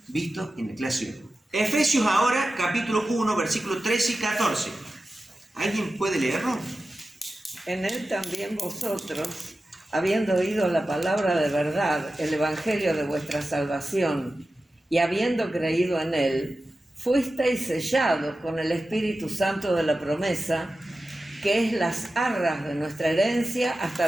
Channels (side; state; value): both; normal; correlation 0.94